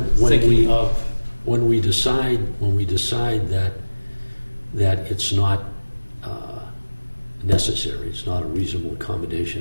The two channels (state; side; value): inverted; both; correlation -1.00